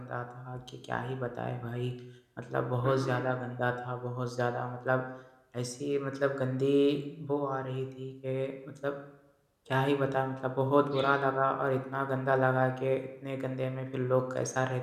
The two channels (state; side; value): identical; both; correlation 1.00